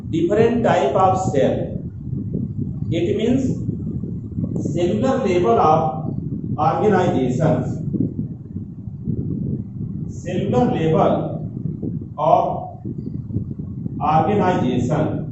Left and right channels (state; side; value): identical; both; correlation 1.00